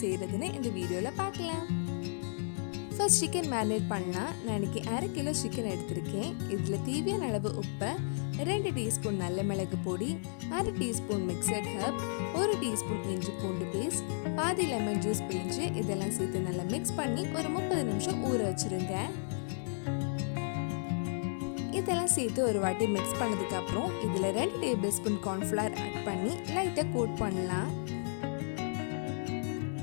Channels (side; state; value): right; silent; 55 dB below the other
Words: செய்கிறதுன்னு இந்த வீடியோவில் பார்க்கலாம். ஃபர்ஸ்ட் சிக்கன் மேரினேட் பண்ணலாம். நான் இன்னைக்கு 1/2 கிலோ சிக்கன் எடுத்திருக்கேன். இதில் தேவையான அளவு உப்பு, 2 டீஸ்பூன் நல்ல மிளகு பொடி, 1/2 டீஸ்பூன் மிக்சட் ஹர்ப், 1 டீஸ்பூன் இஞ்சி பூண்டு பேஸ்ட், பாதி லெமன் ஜூஸ் பிழிஞ்சு இதெல்லாம் சேர்த்து நல்லா மிக்ஸ் பண்ணி ஒரு 30 நிமிஷம் ஊற வச்சுருங்க. இதெல்லாம் சேர்த்து ஒரு வாட்டி மிக்ஸ் பண்ணதுக்கு அப்புறம் இதில் 2 டேபிள் ஸ்பூன் கார்ன்ஃப்ளவர் ஆட் பண்ணி லைட்டாக கோட் பண்ணலாம்.